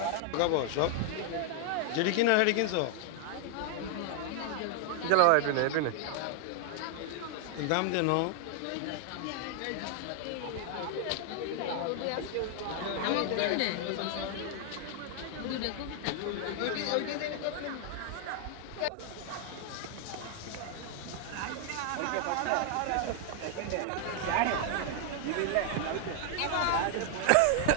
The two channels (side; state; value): both; different; correlation 0.00